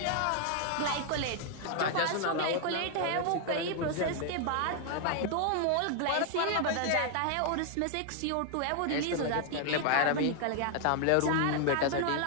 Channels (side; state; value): both; different; correlation 0.00